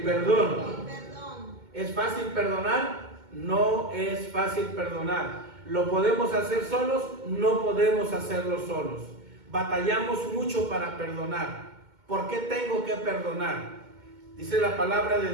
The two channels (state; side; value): late; left; 2.2 ms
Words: perdón. El perdón. ¿Es fácil perdonar? No es fácil perdonar. ¿Lo podemos hacer solos? No podemos hacerlo solos. Batallamos mucho para perdonar. ¿Por qué tengo que perdonar? Dice la palabra de